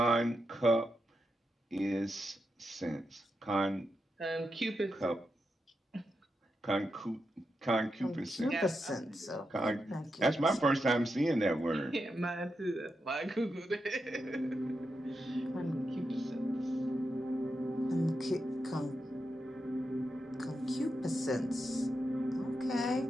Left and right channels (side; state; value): both; normal; correlation 0.86